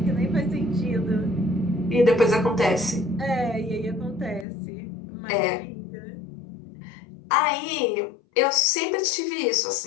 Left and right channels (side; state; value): right; drops out; at 4.5 s